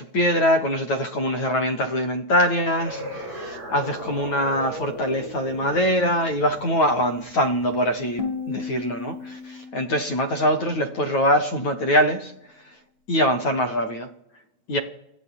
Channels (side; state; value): right; late; 9.2 ms